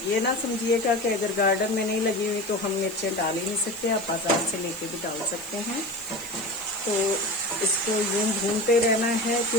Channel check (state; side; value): noise; left; hiss, 16 dB below the sound